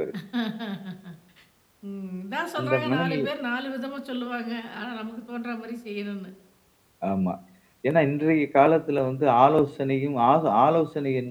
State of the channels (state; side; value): identical; both; correlation 1.00